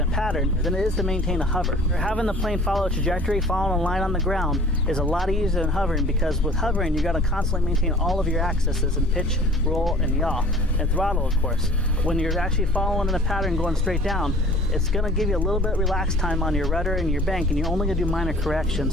pattern than it is to maintain a hover. Having the plane follow a trajectory, following a line on the ground is a lot easier than hovering, because with hovering, you got to constantly maintain all of your axes in pitch, roll, and yaw, and throttle, of course. When you're actually following in a pattern going straight down, it's going to give you a little bit of relaxed time on your rudder and your bank, and you're only going to do minor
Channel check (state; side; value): noise; left; rumble, 12 dB below the sound